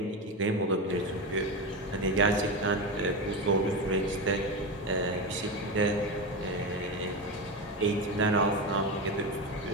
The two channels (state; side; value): normal; both; correlation 0.17